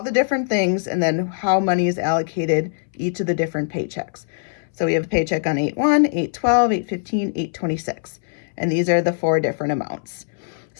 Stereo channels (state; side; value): silent; right; 62 dB below the other